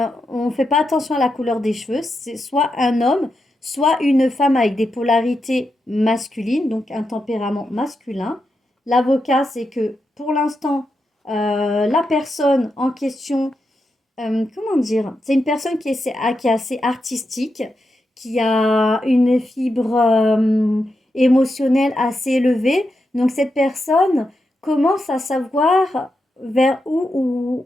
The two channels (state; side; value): normal; both; correlation 0.86